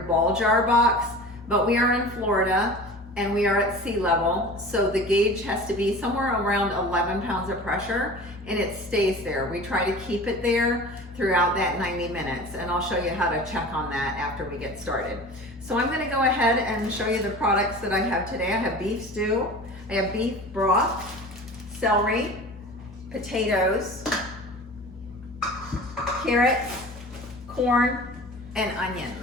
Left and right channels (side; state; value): both; normal; correlation 0.38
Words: jar box, but we are in Florida and we are at sea level, so the gauge has to be somewhere around 11 pounds of pressure, and it stays there. We try to keep it there throughout that 90 minutes, and I'll show you how to check on that after we get started. So I'm gonna go ahead and show you the products that I have today. I have beef stew, I have beef broth, celery, potatoes, carrots, corn, and